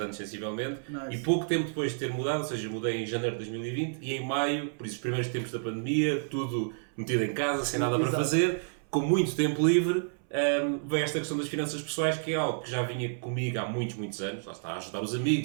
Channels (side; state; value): left; silent; 57 dB below the other